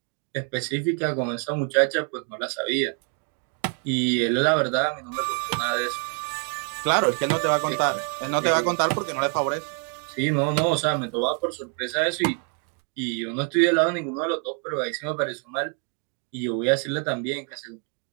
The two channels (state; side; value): quieter; left; 39.1 dB